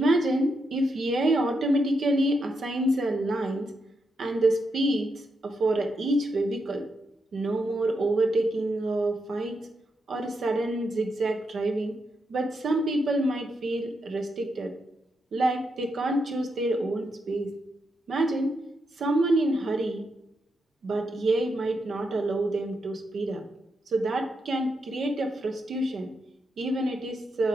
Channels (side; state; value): both; normal; correlation 0.83